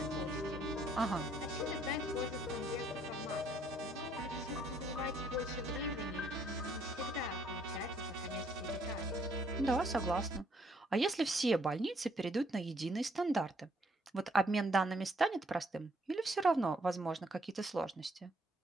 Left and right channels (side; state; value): both; normal; correlation 0.67